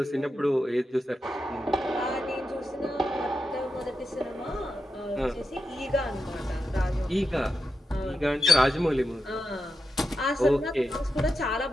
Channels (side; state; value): both; normal; correlation 0.88